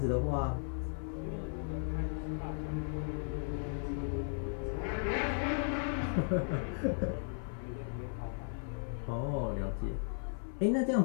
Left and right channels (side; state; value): right; silent; 54 dB below the other